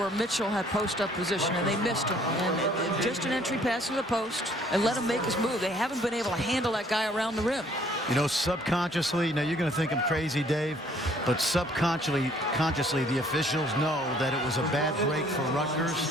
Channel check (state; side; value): normal; both; correlation 0.60